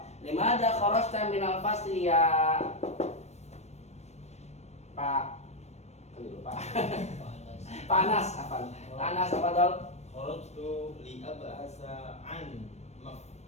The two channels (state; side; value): late; right; 0.32 ms